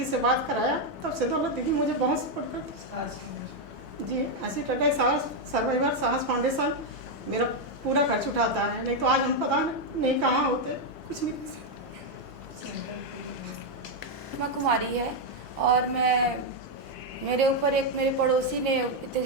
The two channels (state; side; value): normal; both; correlation 0.02